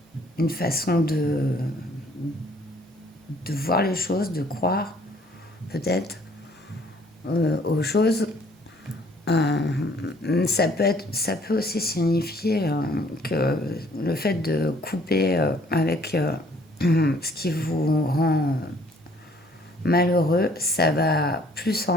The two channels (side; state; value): both; normal; correlation 0.60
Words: façon voir les choses, de croire peut-être aux choses. Ça peut aussi signifier que le fait de couper avec ce qui vous rend malheureux, ça va plus